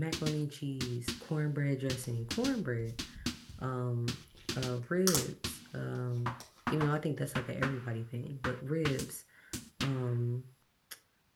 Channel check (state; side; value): identical; both; correlation 1.00